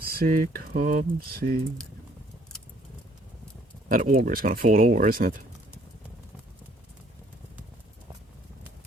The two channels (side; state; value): both; normal; correlation 0.61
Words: come see. That auger is gonna fall over, isn't it?